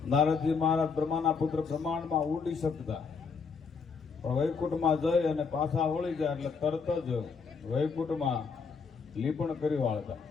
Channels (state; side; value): quieter; right; 5.4 dB